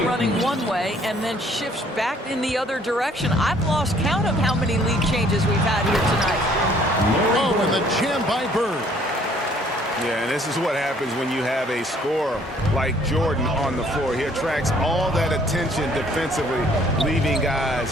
running one way and then shifts back in the other direction. I've lost count of how many lead changes we've had here tonight. Oh, and the jam by Bird. Yeah, and this is what happens when you have a scorer like Jordan on the floor. He attracts all that attention defensively, leaving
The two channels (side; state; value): both; normal; correlation 0.60